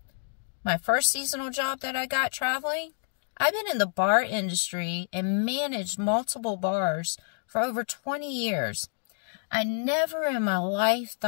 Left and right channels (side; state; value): right; silent; digital silence